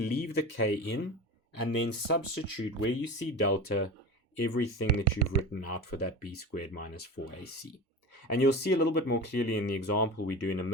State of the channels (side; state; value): both; normal; correlation 0.29